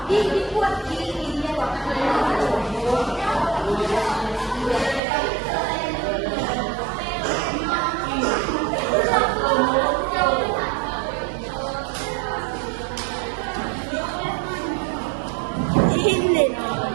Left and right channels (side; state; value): left; drops out; at 5.0 s